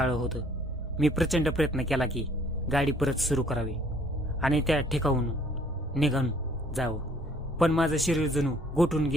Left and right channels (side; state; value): both; normal; correlation 0.60